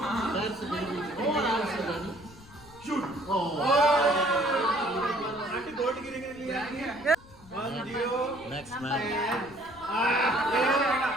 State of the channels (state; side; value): noise; left; rumble, 22 dB below the sound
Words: Shoot. Auntie gold गिरेंगे लिए. 1, 0. Next man.